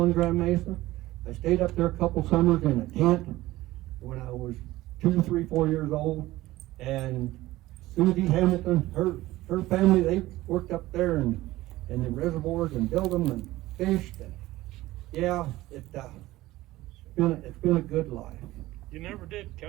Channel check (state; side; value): quieter; left; 17.2 dB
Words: Grand Mesa. I stayed up there a couple summers in a tent when I was 2, 3, 4 years old. And Susie Hamilton, her family, they worked up there in the reservoirs and built them and fished. And yeah, it's been a good life. You never did